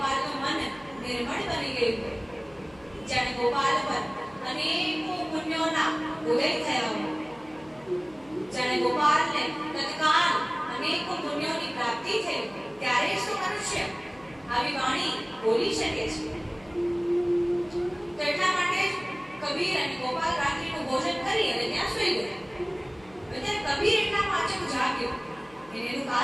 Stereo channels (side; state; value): left; noise; hum, 27 dB below the sound